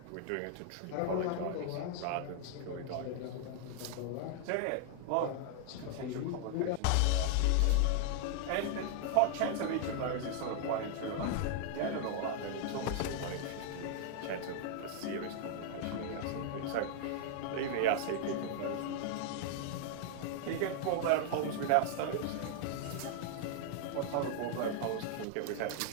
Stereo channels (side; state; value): both; different; correlation 0.00